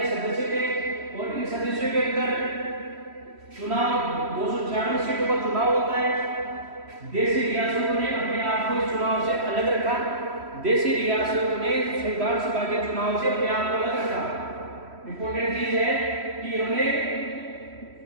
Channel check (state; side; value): late; left; 3.1 ms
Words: सदस्य थे। और इन सदस्यों के अंदर चुनाव 296 सीटों का चुनाव होता है। देशी रियासतों ने अपने आप को इस चुनाव से अलग रखा। देशी रियासतों ने संविधान सभा के चुनाव से अपने आप को अलग रखा। इंपॉर्टेंट चीज है कि इन्होंने